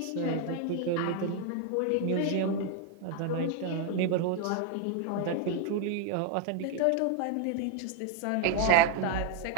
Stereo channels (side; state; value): both; different; correlation 0.01